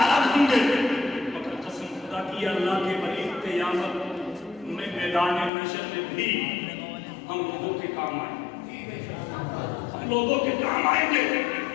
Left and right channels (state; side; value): drops out; right; at 5.5 s